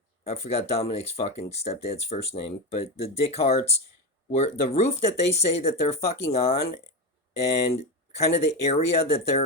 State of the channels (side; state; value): both; normal; correlation 0.15